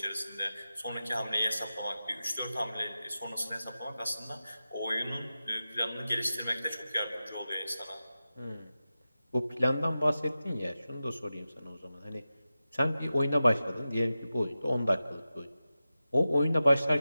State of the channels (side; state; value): both; inverted; correlation -0.94